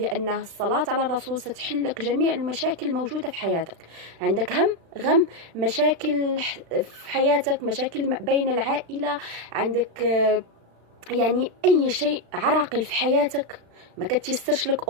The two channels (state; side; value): late; left; 36 ms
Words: الصلاة على الرسول ستحل لك جميع المشاكل الموجودة في حياتك. عندك هم غم، مشاكل في حياتك، مشاكل بين العائلة، عندك يعني أي شيء عراقل في حياتك ما كتيسرش لك